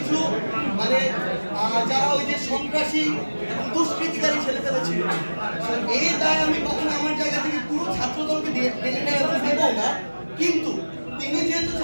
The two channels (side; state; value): both; inverted; correlation -1.00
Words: মানে যারা ওই যে সন্ত্রাসী এবং দুষ্কৃতিকারী ছেলেপেলে ছিল। এই দায় আমি কখনো আমার জায়গা থেকে পুরো ছাত্র দলকে দেব না, কিন্তু তিনি যেহেতু